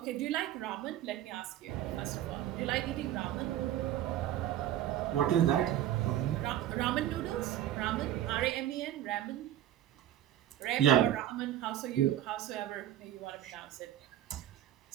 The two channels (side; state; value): left; quieter; 12.1 dB